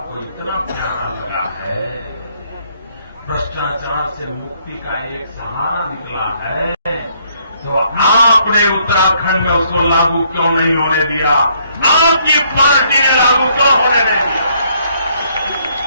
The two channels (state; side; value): inverted; both; correlation -0.68